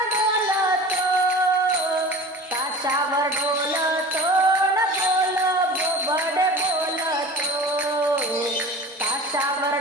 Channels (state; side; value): normal; both; correlation 0.38